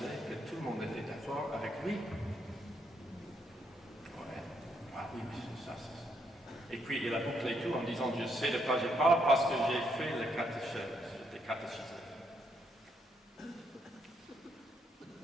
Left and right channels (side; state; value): both; normal; correlation 0.76